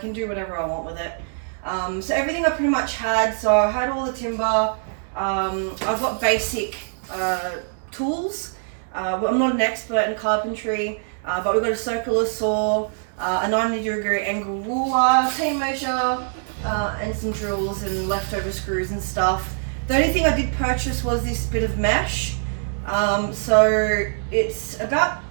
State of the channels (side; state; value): left; silent; digital silence